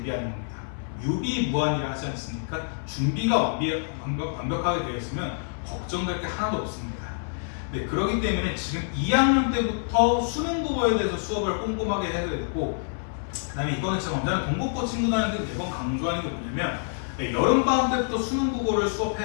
겁니다. 유비무환이라 하지 않습니까? 준비가 완벽하게 되어 있으면 걱정될 게 하나도 없습니다. 네, 그렇기 때문에 지금 2학년 때부터 수능 국어에 대해서 수업을 꼼꼼하게 해야 되고 그 다음에 이거는 제가 언제나 동국고 친구들한테 매번 강조하는 게 뭐냐면 여름방학 때부터 수능 국어를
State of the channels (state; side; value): silent; right; 58 dB below the other